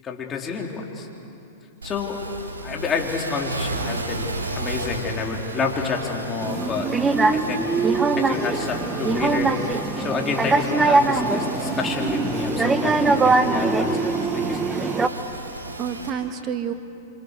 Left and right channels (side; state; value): both; normal; correlation 0.51